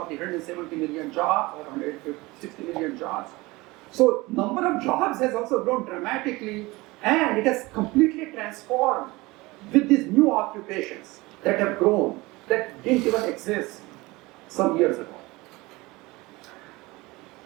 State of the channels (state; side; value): quieter; left; 22.0 dB